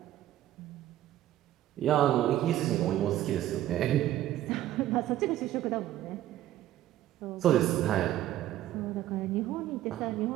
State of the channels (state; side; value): quieter; left; 13.3 dB